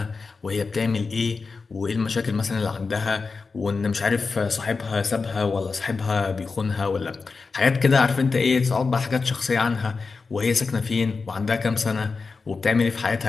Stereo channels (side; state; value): right; quieter; 4.5 dB